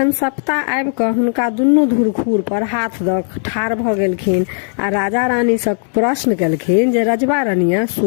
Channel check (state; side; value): silent; right; 59 dB below the other